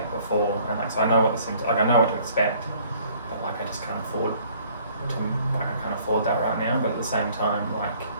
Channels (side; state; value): both; inverted; correlation -0.58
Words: before, and like so I know what the symptoms, like I know what to expect, but like I just can't afford that right now. But at the same time, like